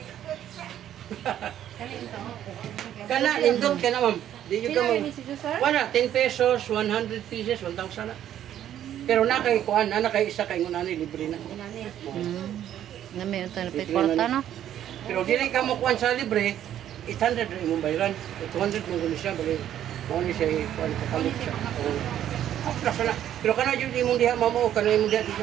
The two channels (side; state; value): left; quieter; 11.0 dB